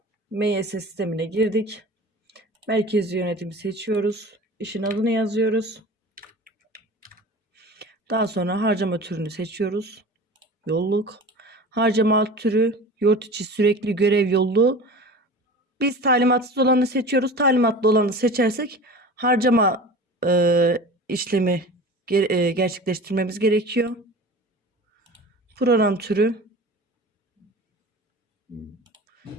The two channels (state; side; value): normal; both; correlation 0.37